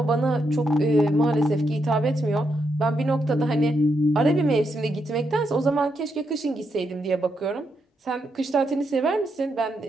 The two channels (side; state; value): both; normal; correlation 0.81